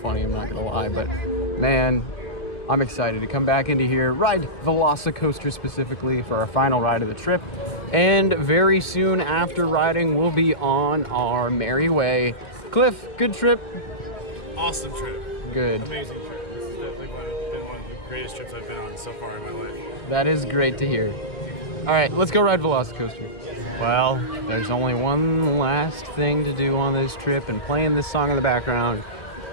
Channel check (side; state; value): right; late; 2.0 ms